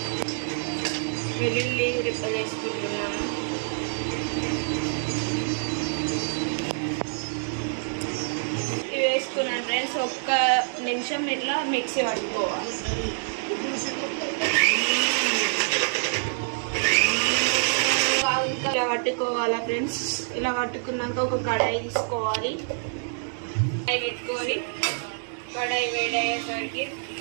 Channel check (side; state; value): left; silent; 58 dB below the other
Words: వెల్లుల్లి రెక్కలు వేసుకుంటున్నాను. ఇవి వేసుకున్నాను ఫ్రెండ్స్. 1 నిమిషం ఇట్లా మిక్సీ పట్టుకోవాలి. ఇలా పట్టుకోవాలా ఫ్రెండ్స్. ఇలా పట్టుకున్నాక ఒక కడాయి తీసుకోవాలి. కడాయి పెట్టుకొని కడాయి వేడయ్యేసరికి